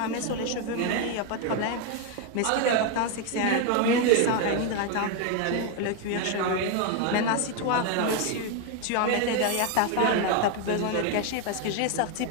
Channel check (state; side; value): different; both; correlation 0.01